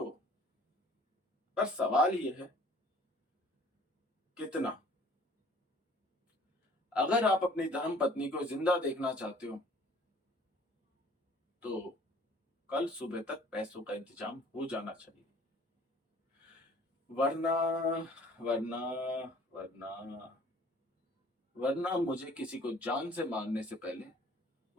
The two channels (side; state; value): both; normal; correlation 0.53